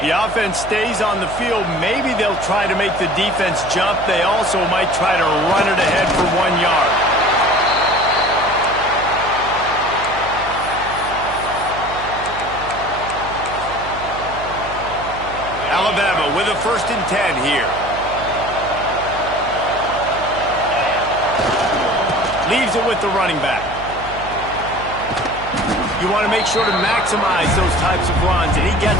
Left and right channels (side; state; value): right; noise; hum, 13 dB below the sound